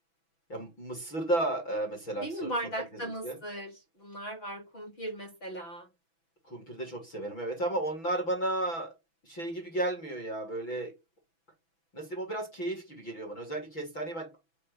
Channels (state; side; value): late; right; 6.0 ms